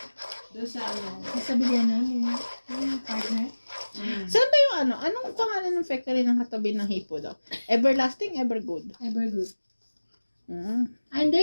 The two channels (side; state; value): both; inverted; correlation -1.00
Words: Doon sa ano. Sa bilihan namin, yung partner. Saan ba yung ano? Anong pangalan ng factory ng katabi ng hipo daw? Everlasting, Evergood. Evergood. Mm. Ah,